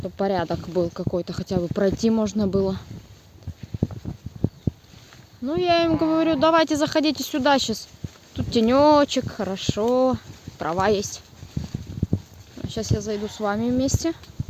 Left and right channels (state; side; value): identical; both; correlation 1.00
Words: порядок был какой-то. Хотя бы пройти можно было. Ну, я им говорю, давайте заходите сюда сейчас. Тут тенечек, хорошо. Трава есть. Сейчас я зайду с вами вместе.